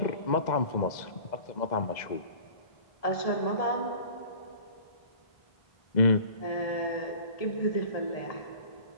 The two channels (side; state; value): right; late; 2.0 ms